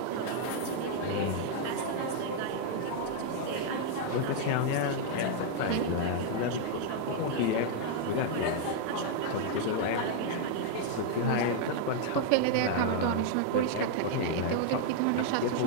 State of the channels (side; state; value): both; different; correlation -0.01